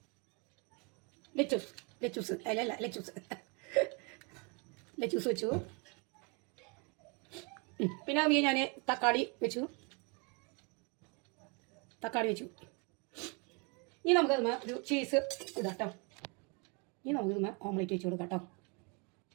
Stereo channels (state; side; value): quieter; left; 32.6 dB